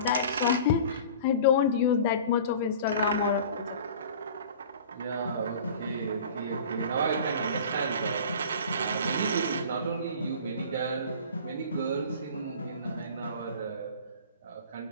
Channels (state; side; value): inverted; both; correlation -0.41